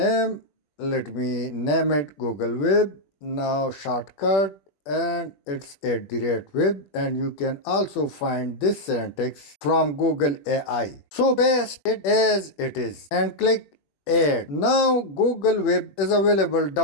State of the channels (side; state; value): right; late; 21 ms